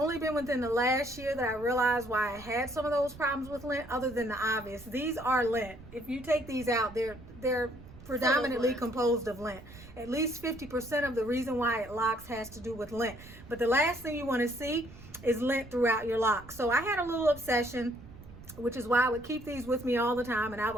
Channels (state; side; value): noise; right; rumble, 18 dB below the sound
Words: been within the last year that I realized why I had some of those problems with lint, other than the obvious. These are lint. If you take these out, they're predominantly composed of lint. At least 50% of the reason why it locks has to do with lint. But the last thing you want to see is lint throughout your lock. So I had a little obsession, which is why I would keep these with me all the time, and I